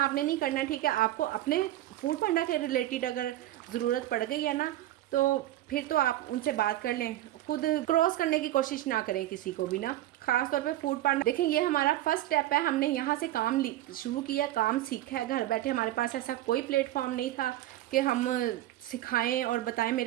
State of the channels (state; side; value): quieter; left; 14.6 dB